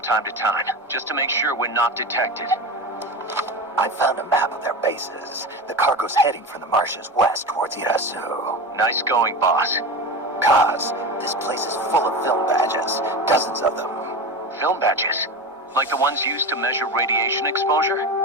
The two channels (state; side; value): normal; both; correlation 0.25